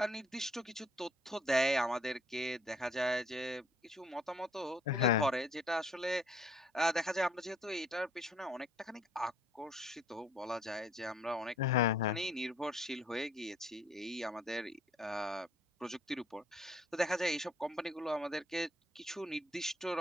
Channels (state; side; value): normal; both; correlation 0.62